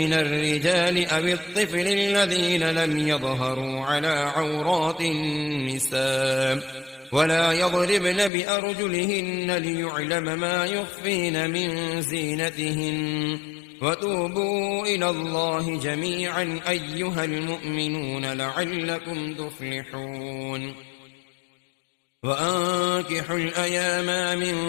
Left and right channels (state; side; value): drops out; right; at 8.3 s